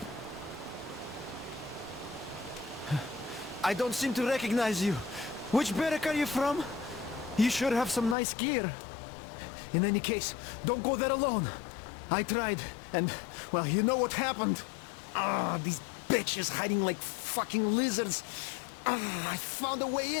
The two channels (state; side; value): drops out; right; at 8.2 s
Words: I don't seem to recognize you. Which barrack are you from? You sure have some nice gear. In any case, don't go there alone. I tried, and, well, you know what happened. These bitches hiding like fucking lizards. I found a way